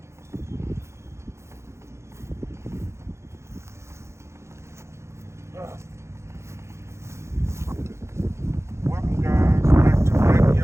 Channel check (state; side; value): late; left; 0.13 ms